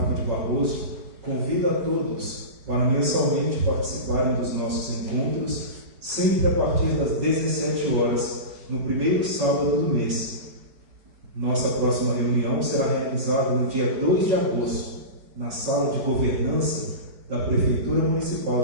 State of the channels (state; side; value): late; left; 5.4 ms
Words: de Barroso convida a todos para mensalmente participarem dos nossos encontros, sempre a partir das 17 horas, no primeiro sábado do mês. Nossa próxima reunião será realizada no dia 2 de agosto, na Sala de Governança da Prefeitura